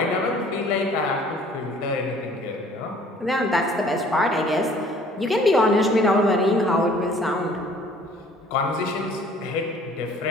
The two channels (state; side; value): normal; both; correlation 0.54